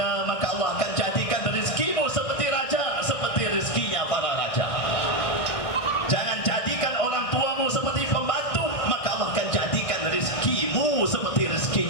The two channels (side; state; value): right; late; 1.6 ms